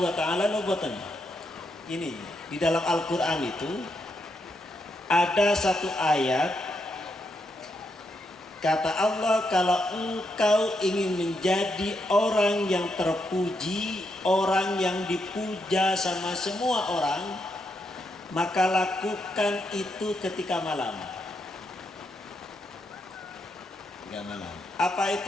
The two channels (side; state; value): both; normal; correlation 0.80